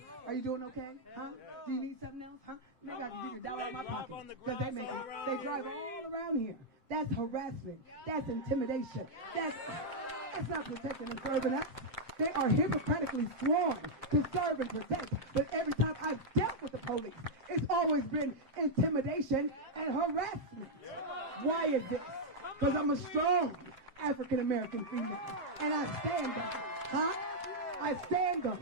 Are you doing okay? Huh? Do you need something else? Huh? They got to get $1 out of my pocket because they drive all around here. That's harassment. That's intimidation. That's not protecting and serving us. They are hypocritically sworn to serve and protect. But every time I've dealt with the police, it's always been intimidation and harassment. Why is this? Because I'm a strong African-American female. And I stand on it. Huh? I stand on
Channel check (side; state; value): left; late; 7.6 ms